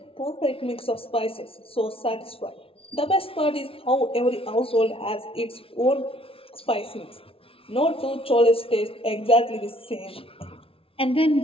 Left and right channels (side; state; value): right; late; 0.26 ms